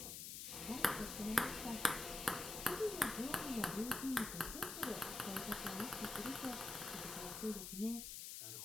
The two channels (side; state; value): left; noise; hiss, 6 dB below the sound